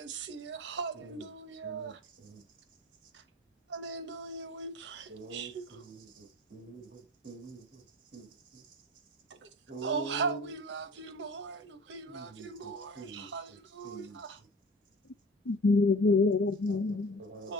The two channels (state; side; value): normal; both; correlation 0.41